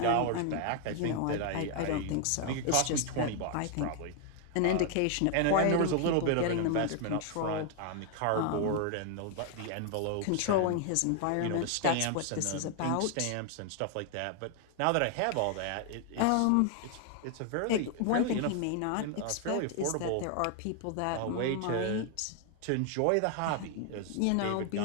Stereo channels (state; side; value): different; both; correlation 0.00